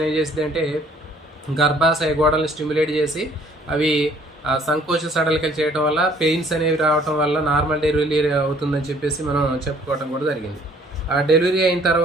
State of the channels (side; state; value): both; normal; correlation 0.59